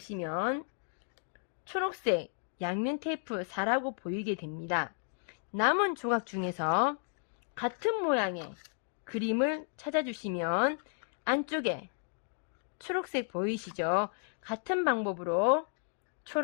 초록색 양면 테이프 4라고 보이게 됩니다. 남은 조각 중에서 같은 모양의 그림을 찾아주시면 안쪽에 초록색 보이시죠? 같은 방법으로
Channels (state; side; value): silent; right; 55 dB below the other